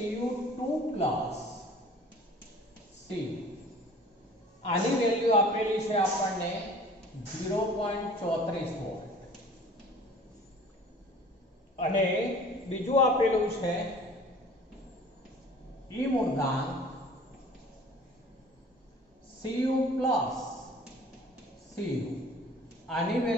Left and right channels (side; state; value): both; normal; correlation 0.48